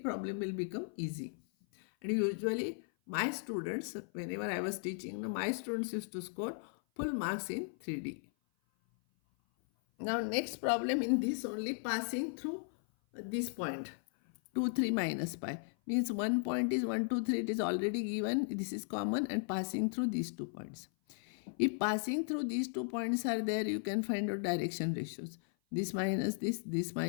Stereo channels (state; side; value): silent; right; 54 dB below the other